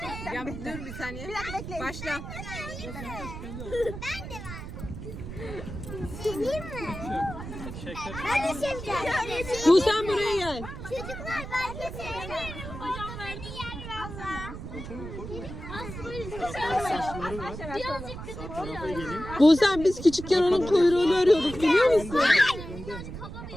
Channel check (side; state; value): right; noise; rumble, 9 dB below the sound